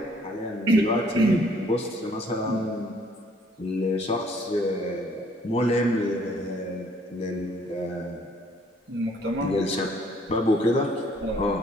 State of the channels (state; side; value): normal; both; correlation 0.62